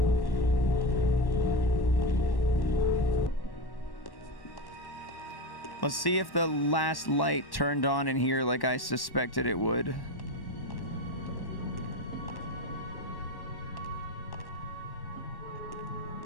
Let's see if the last light turned on in here like I suspected it would.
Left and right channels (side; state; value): right; late; 1.1 ms